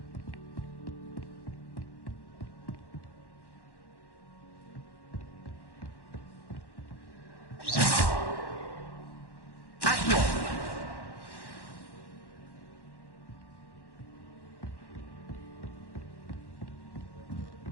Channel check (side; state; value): right; late; 1.1 ms